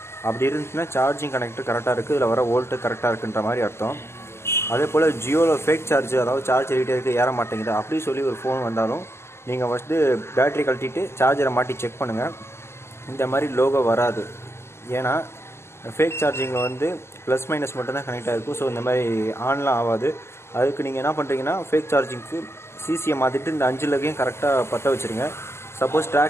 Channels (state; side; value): late; right; 0.12 ms